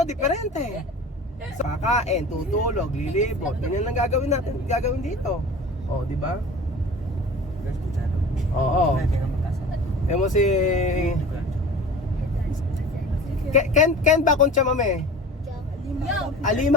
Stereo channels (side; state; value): both; normal; correlation 0.39